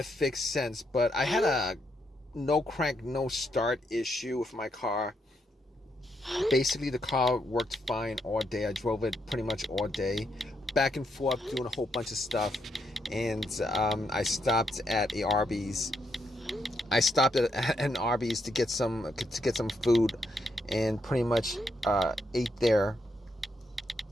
fixed since. But I had a no crank, no start issue with my car. Basically, the car worked fine all day. I drove it pretty much all day, back and forth, doing a whole bunch of stuff, and I stopped at a Arby's. I stopped at an Arby's to get some food, and pretty much ate there.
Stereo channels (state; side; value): normal; both; correlation 0.79